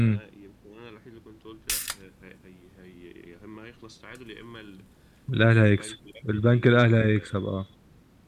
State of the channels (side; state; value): both; identical; correlation 1.00